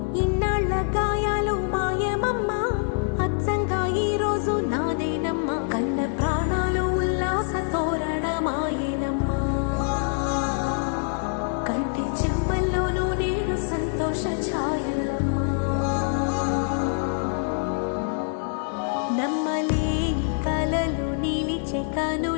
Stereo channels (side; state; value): right; silent; 62 dB below the other